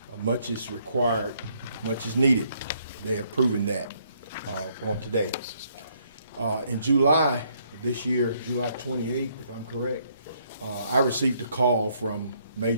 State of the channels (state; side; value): inverted; both; correlation -0.70